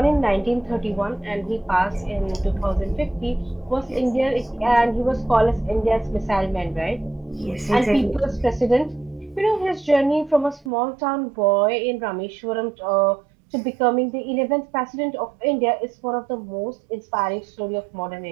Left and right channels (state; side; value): drops out; left; at 10.7 s